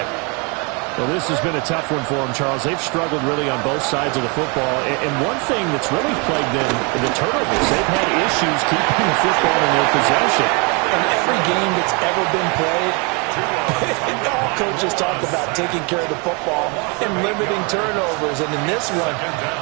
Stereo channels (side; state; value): left; quieter; 32.2 dB